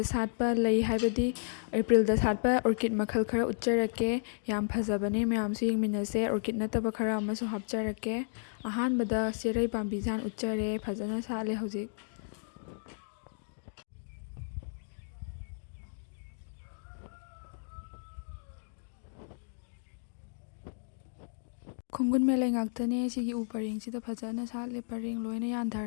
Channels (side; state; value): right; silent; digital silence